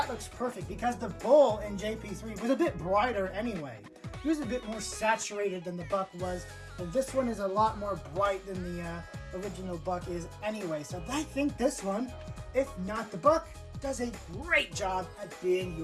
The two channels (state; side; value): identical; both; correlation 1.00